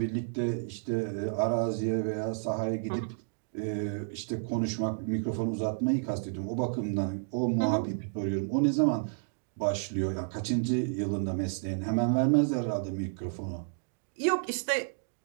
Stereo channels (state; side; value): silent; left; digital silence